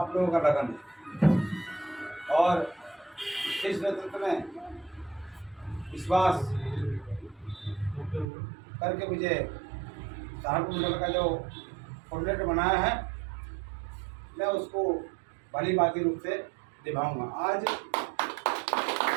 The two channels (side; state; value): left; drops out; at 8.2 s